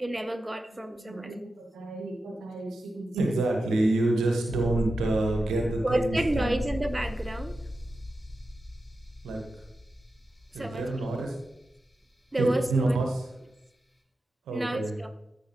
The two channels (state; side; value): normal; both; correlation 0.91